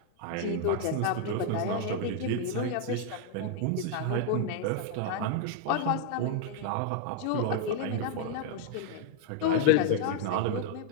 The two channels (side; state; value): both; different; correlation 0.00